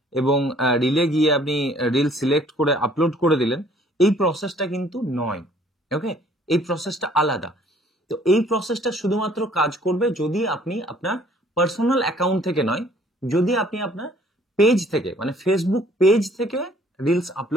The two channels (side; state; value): both; normal; correlation 0.58